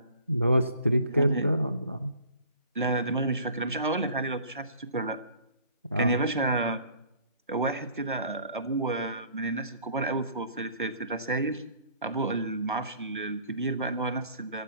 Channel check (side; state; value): both; inverted; correlation -0.52